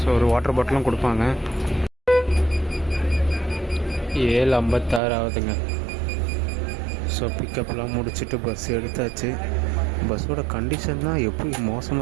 ஒரு வாட்டர் பாட்டிலும் கொடுப்பாங்க. 7:56 ஆகுதுங்க. ஸோ பிக்கப்லாம் முடிச்சுட்டு பஸ் எடுத்தாச்சு. பஸ்ஸோட கண்டிஷன் தான் எப்படி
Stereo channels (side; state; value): left; drops out; at 5.0 s